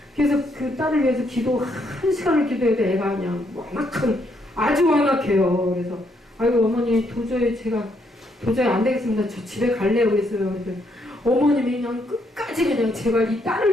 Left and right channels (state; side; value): normal; both; correlation 0.74